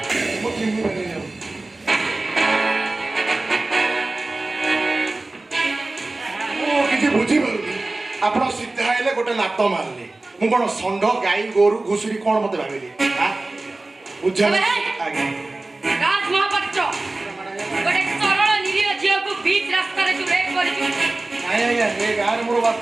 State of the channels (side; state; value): left; quieter; 3.0 dB